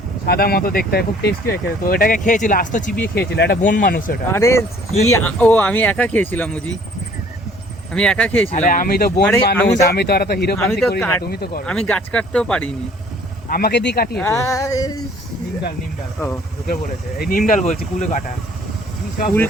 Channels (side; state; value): both; normal; correlation 0.56